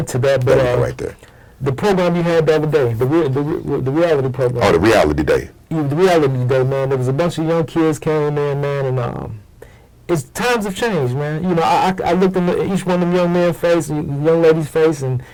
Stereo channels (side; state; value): both; identical; correlation 1.00